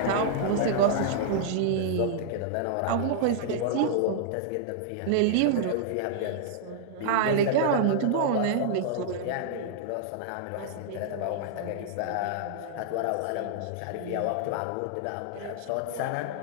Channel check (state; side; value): different; both; correlation -0.01